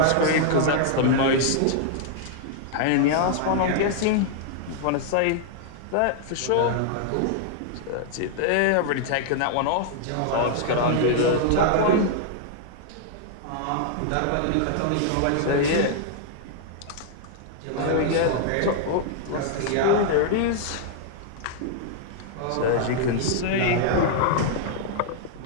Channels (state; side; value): different; both; correlation -0.01